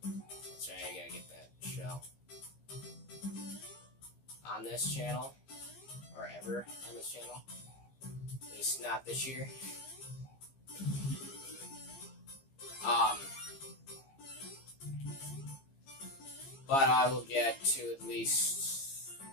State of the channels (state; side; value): late; right; 15 ms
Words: That's right, I gotta get that shell. On this channel, or ever on this channel. At least not this year. But I will get to at least,